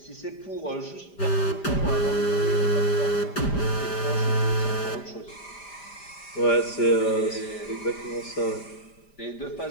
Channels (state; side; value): late; right; 5.0 ms